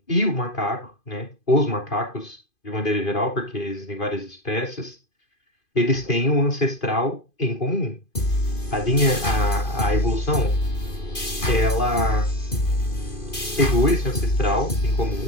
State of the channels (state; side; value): late; right; 2.5 ms